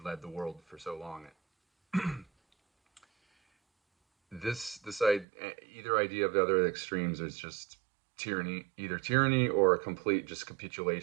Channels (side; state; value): left; drops out; at 5.2 s